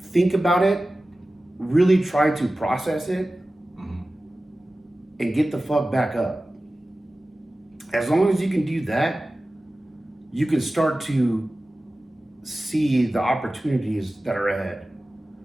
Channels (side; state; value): both; normal; correlation 0.96